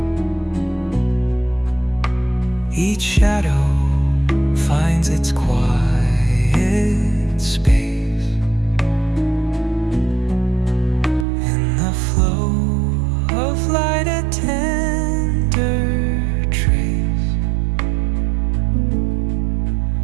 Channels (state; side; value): drops out; left; at 11.2 s